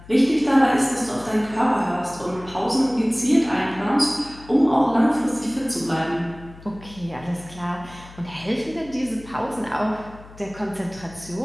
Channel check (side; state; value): left; noise; hum, 19 dB below the sound